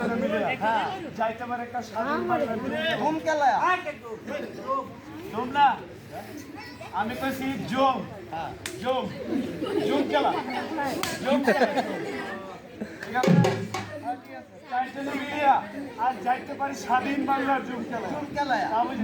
মিলে যাইতে পারে একটা স্বাধীন ধুম খেলা ধুম না আমি কইছি জম জম জম খেলা জম খেলা ঠিক আছে চাইটারে মিলিয়া আর যাইতে পারি স্বাধীন বাংলার জম খেলা তাহলে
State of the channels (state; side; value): identical; both; correlation 1.00